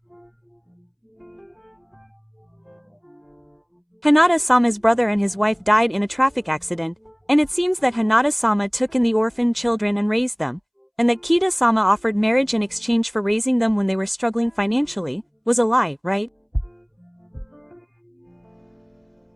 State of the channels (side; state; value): both; identical; correlation 1.00